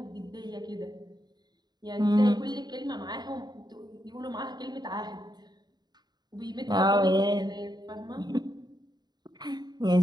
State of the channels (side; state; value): left; late; 0.20 ms